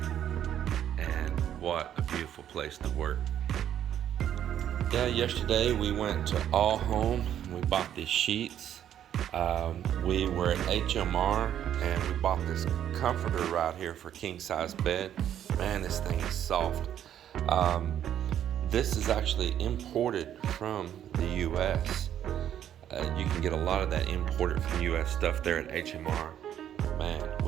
and what a beautiful place to work. Yeah, yesterday we went to All Home. We bought these sheets. We were at HMR and we bought this comforter right here for king size bed. Man, this thing is soft. This is actually imported from the US. You can get a lot of that imported from US stuff there at HMR. Man,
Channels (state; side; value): quieter; left; 10.4 dB